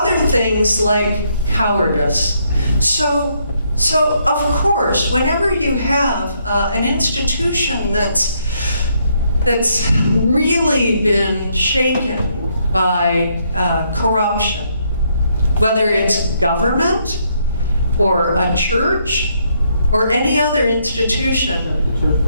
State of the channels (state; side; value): inverted; both; correlation -0.73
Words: things like cowardice. So of course, whenever you have an institution that's really been shaken by corruption, whether it's government or a church or any other institution. The church